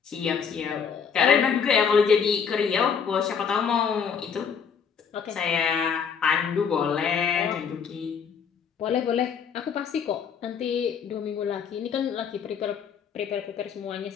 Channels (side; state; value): right; quieter; 6.8 dB